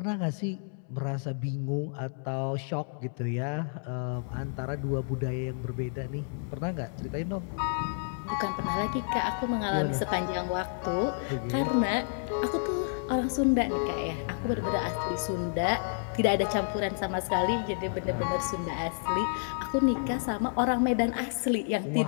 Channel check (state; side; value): silent; right; digital silence